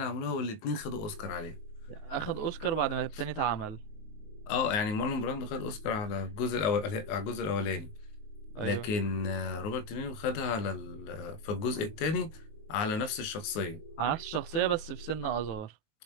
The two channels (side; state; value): right; late; 19 ms